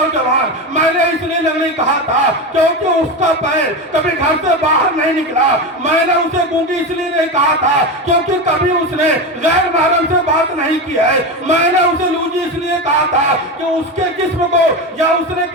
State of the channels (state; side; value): normal; both; correlation 0.19